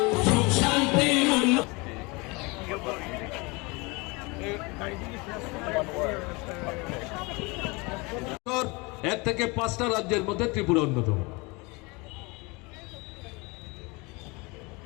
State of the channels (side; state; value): right; quieter; 26.5 dB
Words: এক থেকে 5টা রাজ্যের মধ্যে ত্রিপুরা অন্যতম।